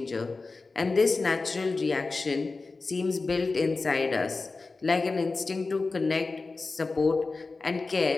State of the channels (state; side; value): quieter; right; 3.8 dB